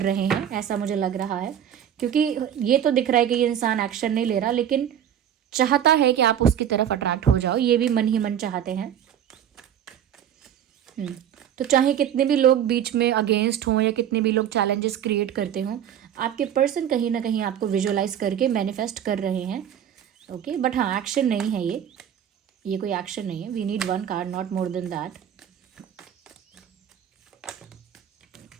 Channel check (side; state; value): left; quieter; 9.7 dB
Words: रहे हैं, ऐसा मुझे लग रहा है, क्योंकि ये तो दिख रहा है कि ये इंसान एक्शन नहीं ले रहा, लेकिन चाहता है कि आप उसकी तरफ अट्रैक्ट हो जाओ, ये भी मन ही मन चाहते हैं। तो चाहे कितने भी लोग बीच में अगेंस्ट हों या कितने भी लोग चैलेंजेस क्रिएट करते हों, आपके पर्सन कहीं ना कहीं आपको विजुअलाइज करके मैनिफेस्ट कर रहे हैं। ओके, बट हाँ, एक्शन नहीं है ये कोई एक्शन नहीं है। We need one card, not more than that.